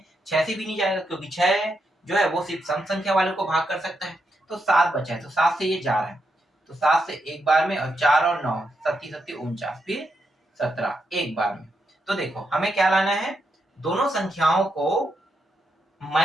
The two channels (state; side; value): normal; both; correlation 0.83